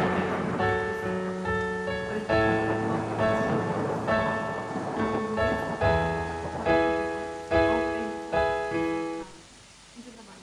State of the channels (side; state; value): both; identical; correlation 1.00